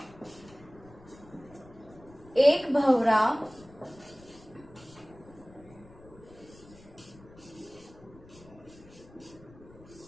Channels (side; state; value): left; noise; rumble, 22 dB below the sound